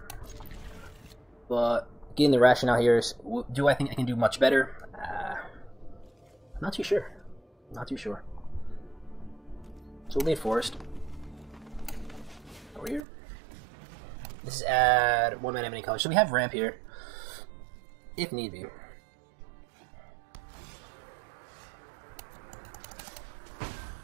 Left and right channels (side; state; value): left; drops out; at 13.1 s